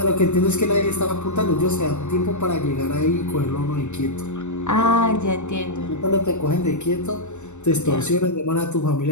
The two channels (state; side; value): late; right; 0.84 ms